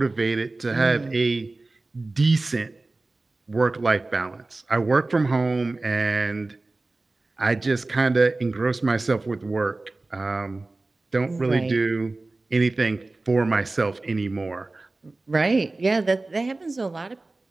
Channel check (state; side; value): quieter; left; 3.2 dB